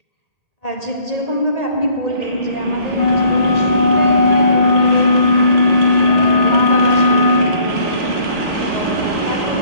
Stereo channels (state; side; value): late; right; 1.8 ms